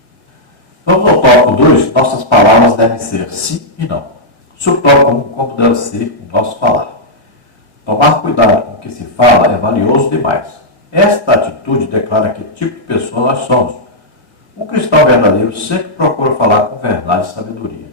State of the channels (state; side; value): late; right; 1.8 ms